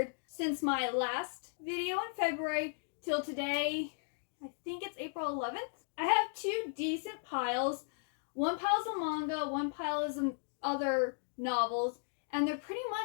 since my last video in February till today. I think it's April 11th. I have two decent piles. One pile is a manga, one pile is other novels, and they're pretty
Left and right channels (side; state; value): right; silent; digital silence